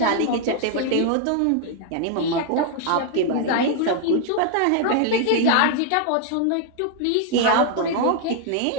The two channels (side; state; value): both; different; correlation 0.00